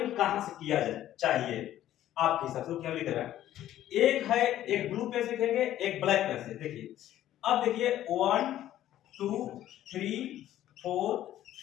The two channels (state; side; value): quieter; right; 12.7 dB